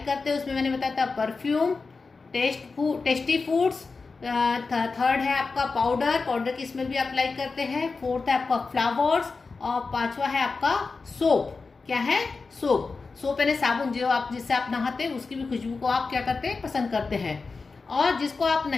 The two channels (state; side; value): quieter; right; 4.3 dB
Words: करते हैं उसमें मैंने बताया था परफ्यूम, टेस्टी फूड्स। थर्ड है आपका पाउडर की स्मेल भी आप लाइक करते हैं। फोर्थ है आपका फ्लावर्स, और पांचवा है आपका सोप। क्या है? सोप। सोप यानी साबुन, जो आप जिससे आप नहाते हैं उसकी भी खुशबू को आप क्या करते हैं? पसंद करते हैं। और जिसको आप